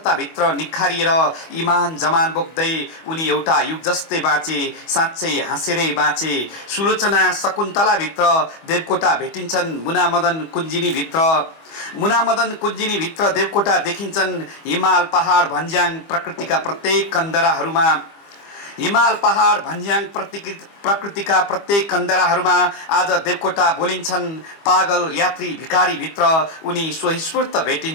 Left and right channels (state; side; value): late; right; 25 ms